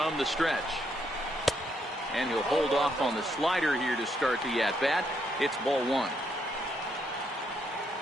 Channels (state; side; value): normal; both; correlation 0.75